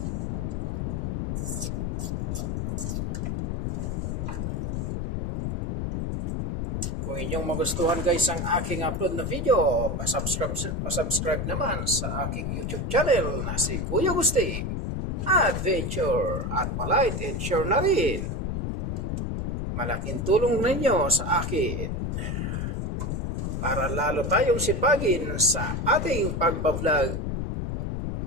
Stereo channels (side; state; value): left; noise; rumble, 1 dB below the sound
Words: Kung inyong magustuhan guys ang aking upload na video, pasubscribe naman sa aking YouTube channel na si Kuya Gusti Adventure at palike and share na rin. Malaking tulong ninyo sa akin para lalo tayong sipagin sa ating pagbablog